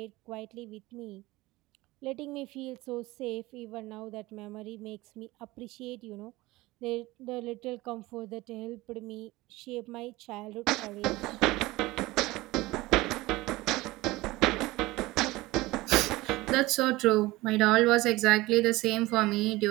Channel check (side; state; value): left; quieter; 19.9 dB